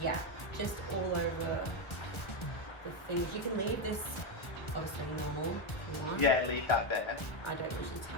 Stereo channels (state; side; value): late; right; 1.3 ms